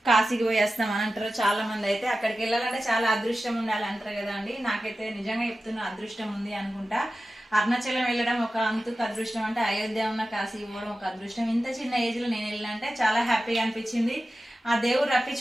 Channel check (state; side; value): normal; both; correlation 0.94